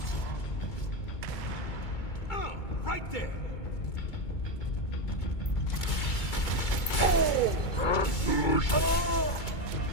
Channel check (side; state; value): right; late; 2.2 ms